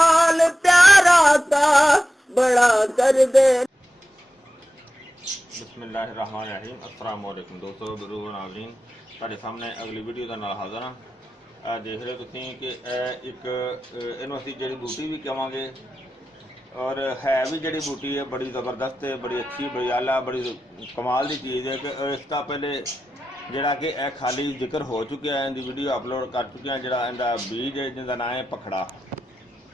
प्यारा का बड़ा कर दे। बिस्मिल्लाहिर्रहमानिर्रहीम। अस्सलाम वालेकुम दोस्तों, गुरु नाज़रीन, ਤੁਹਾਡੇ ਸਾਹਮਣੇ ਅਗਲੀ ਵੀਡੀਓ ਦੇ ਨਾਲ ਹਾਜ਼ਰ ਹਾਂ। ਦੇਖ ਰਹੇ ਤੁਸੀਂ ਕਿ ਇੱਕ ਇਹਨੂੰ ਅਸੀਂ ਜੜੀ ਬੂਟੀ ਵੀ ਕਹਾਂਗੇ, ਔਰ ਹੈ ਵੀ ਜੜੀ ਬੂਟੀ ਹੈ ਬੜੀ ਜ਼ਬਰਦਸਤ ਹੈ, ਬੜੀ ਅੱਛੀ, ਬੜੀ ਆਲਾ, ਬੜੀ ਕਮਾਲ ਦੀ ਚੀਜ਼ ਹੈ। ਕਿ ਇਸ ਤੋਂ ਪਹਿਲੇ ਜਿਹੜਾ ਕਿ ਇਹ ਖਾਲੀ ਜ਼ਿਕਰ ਹੋ ਚੁੱਕਿਆ ਹੈ, ਇਹਦੀ ਵੀਡੀਓ ਅਪਲੋਡ ਕਰ ਚੁੱਕੇ ਹਾਂ। ਜਿਹੜਾ ਇਹਦਾ ਬੀਜ ਹੈ ਜਿਹਦਾ ਨਾਂ ਹੈ ਪਖੜਾ,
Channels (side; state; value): both; normal; correlation 0.92